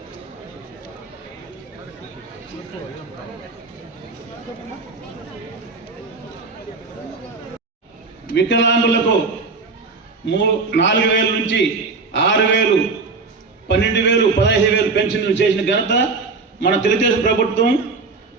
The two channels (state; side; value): quieter; left; 4.2 dB